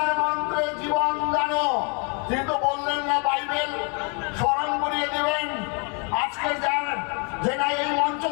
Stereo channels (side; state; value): right; quieter; 35.8 dB